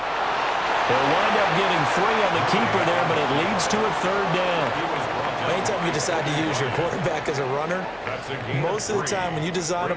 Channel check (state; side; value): noise; left; hum, 27 dB below the sound